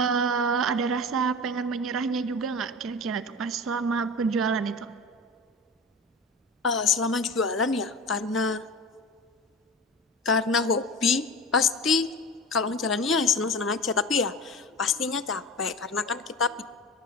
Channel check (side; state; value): both; normal; correlation 0.31